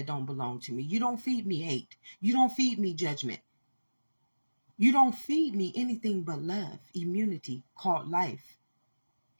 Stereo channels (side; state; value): both; inverted; correlation -1.00